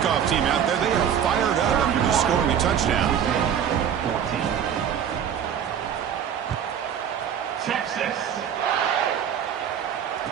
team out there, they are fired up after just scoring a touchdown. 14. Texas.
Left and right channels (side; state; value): left; quieter; 8.7 dB